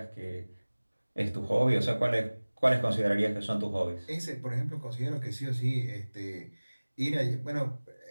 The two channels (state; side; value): inverted; both; correlation -1.00